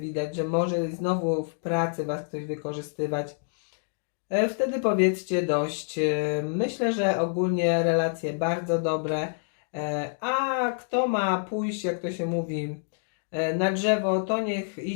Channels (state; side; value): silent; right; digital silence